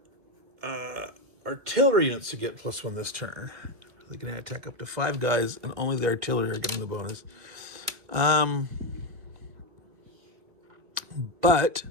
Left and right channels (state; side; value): late; left; 2.3 ms